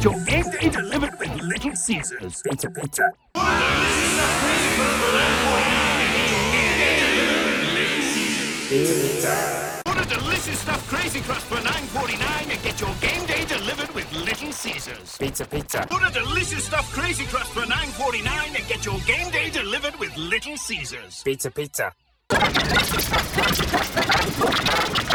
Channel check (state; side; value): identical; both; correlation 1.00